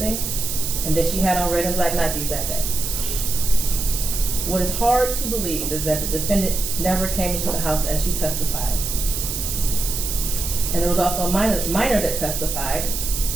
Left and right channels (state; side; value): noise; right; hiss, 3 dB below the sound